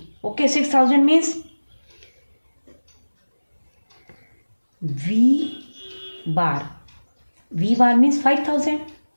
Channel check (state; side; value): inverted; both; correlation -1.00